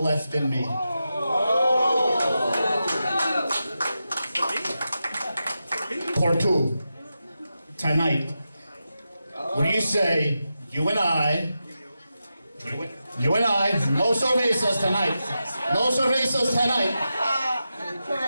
left in me. Part two, tonight. What do you say, you and I, no cervezas tonight. No cervezas tonight.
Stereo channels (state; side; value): inverted; both; correlation -0.90